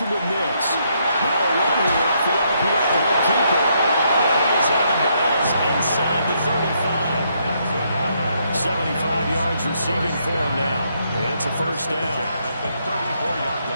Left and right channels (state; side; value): inverted; both; correlation -0.74